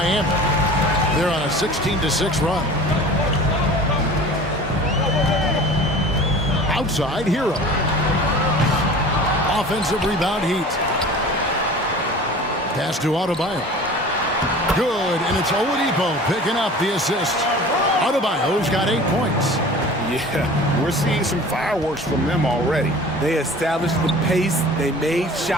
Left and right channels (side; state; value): both; normal; correlation 0.41